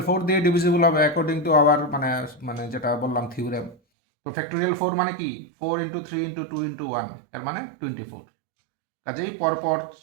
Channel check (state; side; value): drops out; left; at 3.8 s